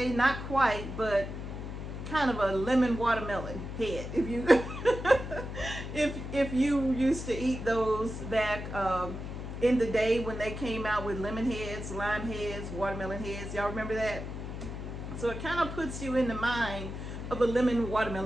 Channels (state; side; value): noise; left; hum, 7 dB below the sound